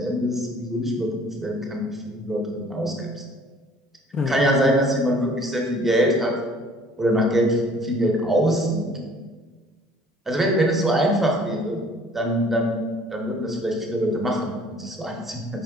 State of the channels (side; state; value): both; normal; correlation 0.54